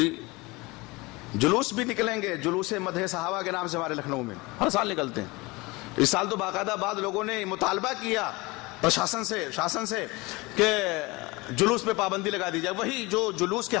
جلوس بھی نکلیں گے, جلوس مدح صحابہ کے نام سے ہمارے لکھنؤ میں ہر سال نکلتے ہیں. اس سال تو باقاعدہ بعض لوگوں نے مطالبہ کیا شاسن سے کہ جلوس پہ پابندی لگا دی جائے. وہی جو جلوس کے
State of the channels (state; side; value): quieter; right; 23.7 dB